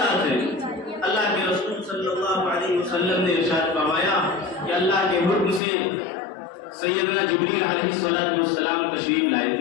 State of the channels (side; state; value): right; drops out; at 5.6 s